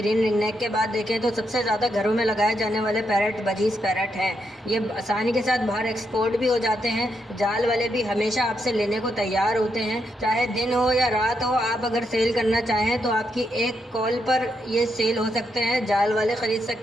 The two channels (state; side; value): normal; both; correlation 0.80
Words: रिंगनेक के बाद देखें, तो सबसे ज़्यादा घरों में लगाए जाने वाले पैरेट बजीज पैरेट हैं। ये आसानी के साथ बाहर एक्सपोर्ट भी हो जाते हैं। जाल वाले भी हमेशा आपसे लेने को तैयार होते हैं। चाहे दिन हो या रात हो, आप अगर सेल करना चाहें तो आपकी एक कॉल पर ये सेल हो सकते हैं। जाल वाले ख़रीद